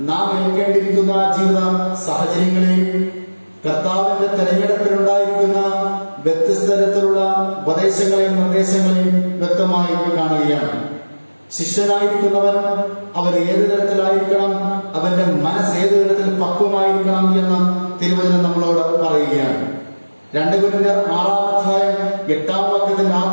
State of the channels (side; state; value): both; inverted; correlation -1.00